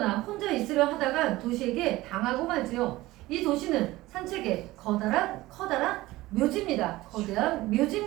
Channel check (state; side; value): quieter; left; 18.3 dB